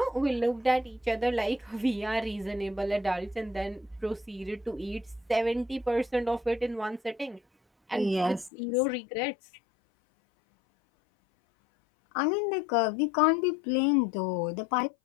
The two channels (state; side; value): drops out; right; at 8.5 s